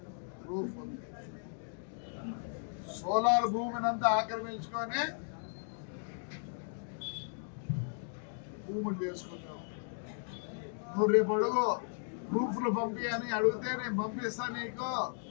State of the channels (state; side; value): silent; right; digital silence